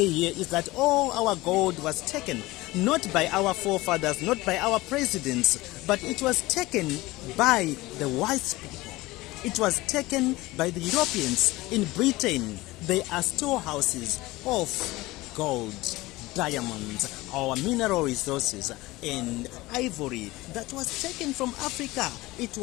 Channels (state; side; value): quieter; right; 19.8 dB